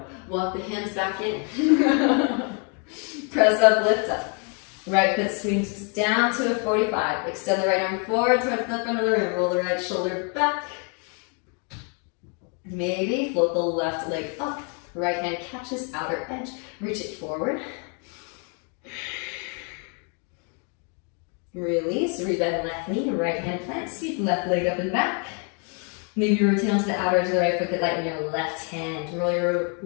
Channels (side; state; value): right; quieter; 38.7 dB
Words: Walk the hands back in. Press up, lift up. Right foot swings down to a 45. Extend the right arm forward towards the front of the room. Roll the right shoulder back. Maybe float the left leg up. Right hand catches outer edge. Reach it forward. Release. Rebend left knee. Right hand plant. Sweep left leg up and back. Maybe rotate onto the outer edge of the right foot. Get light in your left hand. Roll your